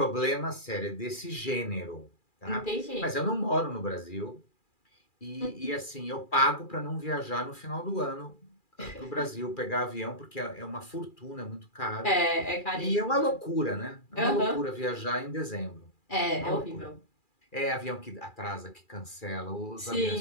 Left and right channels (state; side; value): late; right; 2.4 ms